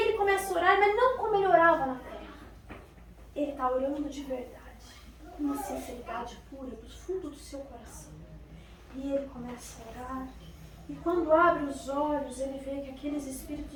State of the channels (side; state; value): both; identical; correlation 1.00